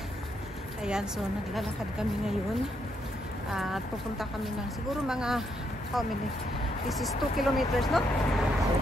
Ayan, so naglalakad kami ngayon. At pupunta kami ng siguro mga how many? This is 2 kilometers, no?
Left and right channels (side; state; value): both; normal; correlation 0.76